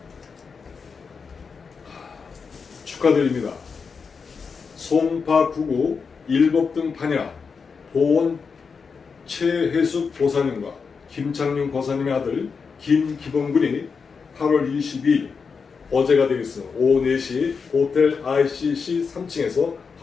축하드립니다. 송파구구 일법등 판야 보원 최혜숙 보사님과 김창윤 고사님의 아들 김기범군이 8월 22일 어제가 되겠습니다. 오후 4시 호텔 ICC 3층에서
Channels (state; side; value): quieter; right; 5.4 dB